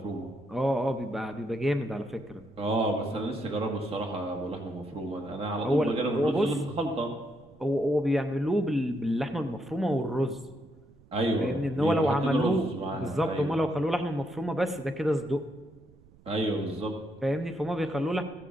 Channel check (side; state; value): right; noise; rumble, 27 dB below the sound